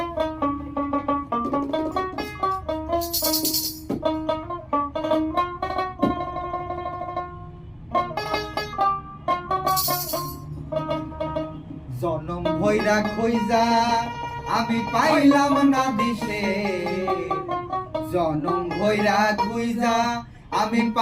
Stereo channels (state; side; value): identical; both; correlation 1.00